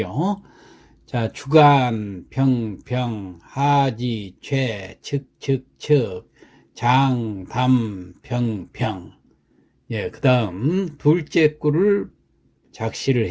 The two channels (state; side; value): identical; both; correlation 1.00